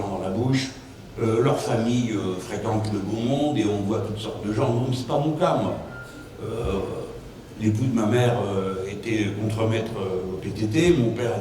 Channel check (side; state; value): both; identical; correlation 1.00